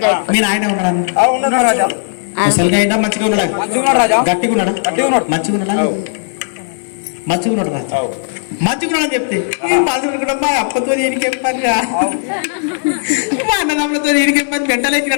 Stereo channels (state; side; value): silent; right; digital silence